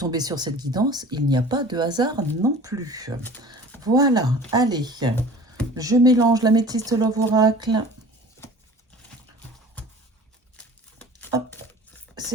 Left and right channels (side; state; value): both; normal; correlation 0.43